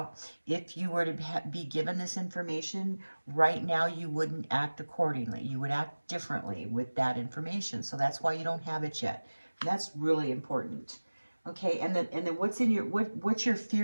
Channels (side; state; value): both; inverted; correlation -1.00